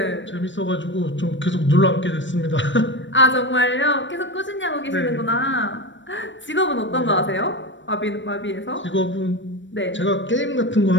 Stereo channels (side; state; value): right; late; 0.54 ms